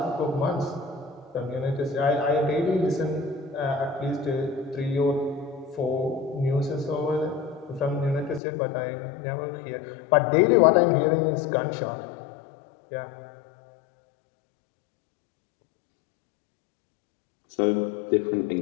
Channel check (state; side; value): drops out; right; at 8.4 s